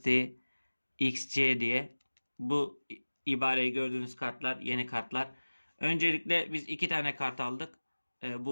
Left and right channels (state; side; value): inverted; both; correlation -1.00